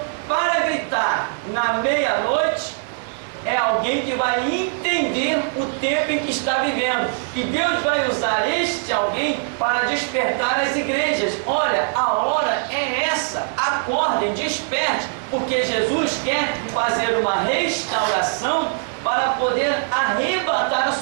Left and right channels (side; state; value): left; silent; digital silence